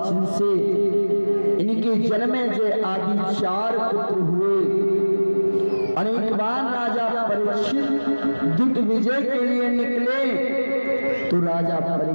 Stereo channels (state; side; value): inverted; both; correlation -1.00